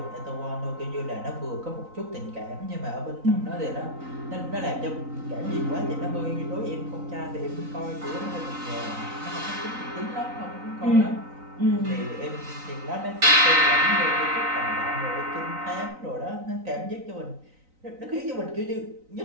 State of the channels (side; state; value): left; late; 3.9 ms